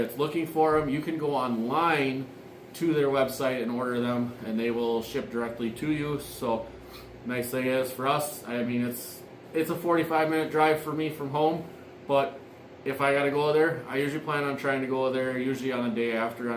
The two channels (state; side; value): identical; both; correlation 1.00